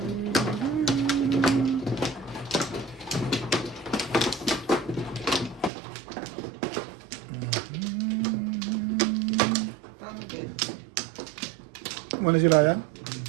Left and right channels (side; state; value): left; drops out; at 5.7 s